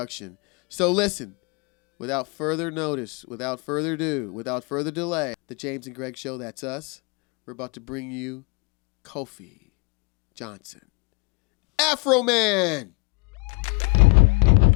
So listen, without further notice, without further ado, without further delay, the James and Greg Show, that's us. We're about to bring you Kofi Johnson. Afro Man!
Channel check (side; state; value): right; quieter; 29.8 dB